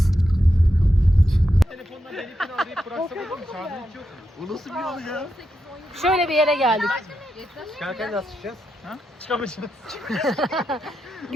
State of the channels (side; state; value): both; normal; correlation 0.85